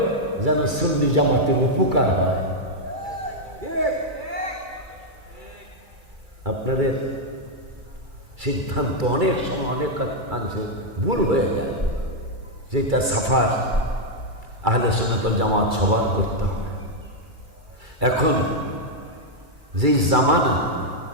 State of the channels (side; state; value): left; late; 2.3 ms